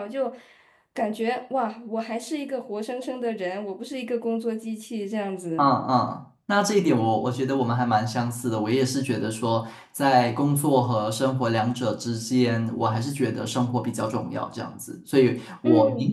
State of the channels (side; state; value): both; identical; correlation 1.00